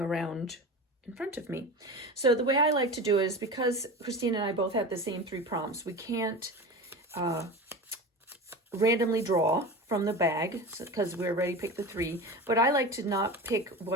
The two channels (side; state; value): both; normal; correlation 0.30